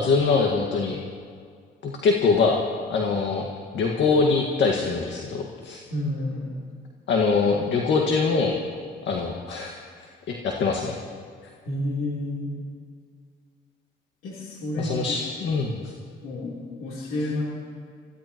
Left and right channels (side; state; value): right; quieter; 3.8 dB